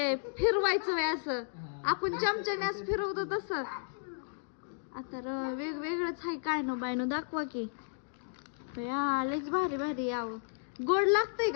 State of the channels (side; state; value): right; silent; digital silence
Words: फिरवायचं वय असं आपण चमच्याने असं फिरवतो तसं. आता वेगवेगळंच आहे. काय नो बाय नो दाखवा की. लयच भारी भारी यावं. गोड लागतंय